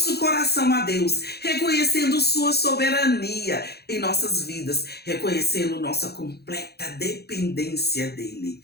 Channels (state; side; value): late; right; 0.47 ms